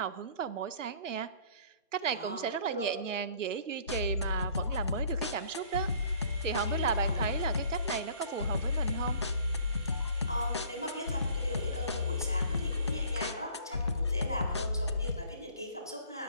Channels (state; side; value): inverted; both; correlation -0.54